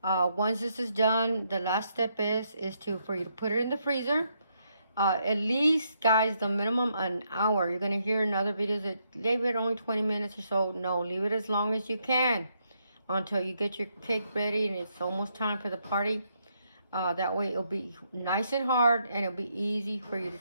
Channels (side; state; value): both; inverted; correlation -0.77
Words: Once this is done, the last step is for you to put it in the freezer. At least, guys, the minimum an hour. You're going to hear in other videos that leave it only 20 minutes or so. No, leave it as long as you can until you get your cake ready and it's almost time for the party. That way it'll be nice and hard and it'll be easy for you to